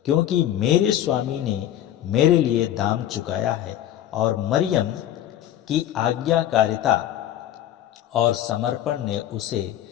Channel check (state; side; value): quieter; right; 11.8 dB